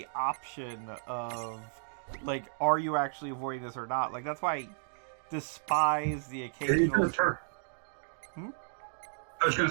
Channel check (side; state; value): left; silent; digital silence